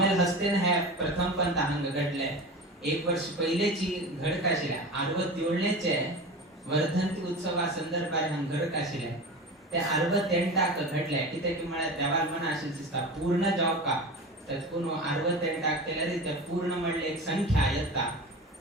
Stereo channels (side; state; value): both; normal; correlation 0.31